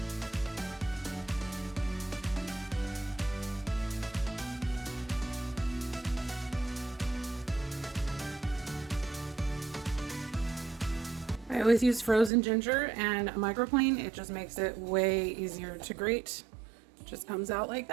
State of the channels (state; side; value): drops out; left; at 12.3 s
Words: I always use frozen ginger and a microplane. It just makes it way easier to grate. Just comes out like